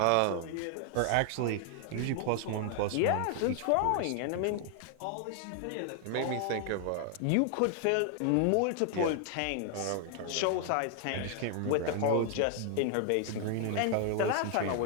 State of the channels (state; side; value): different; both; correlation 0.00